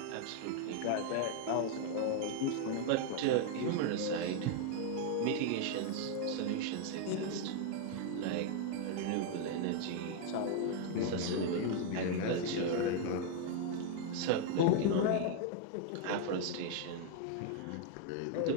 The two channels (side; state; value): both; different; correlation 0.00